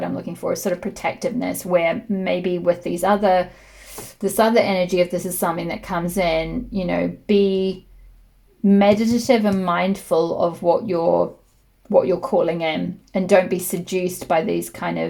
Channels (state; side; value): identical; both; correlation 1.00